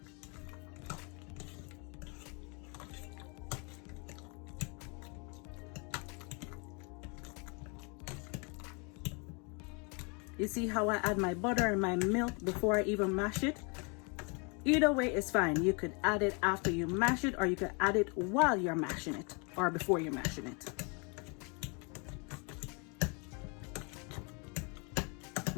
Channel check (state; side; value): quieter; right; 33.4 dB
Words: You see how I add my butter and my milk before I even mash it? Either way is fine. You could add it after you mash it, or you could add it while you're mashing it, or before you're mashing it.